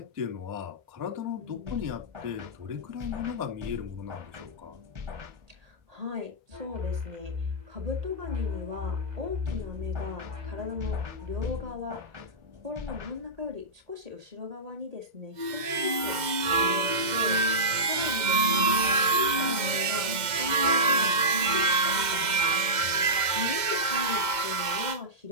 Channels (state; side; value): late; left; 2.0 ms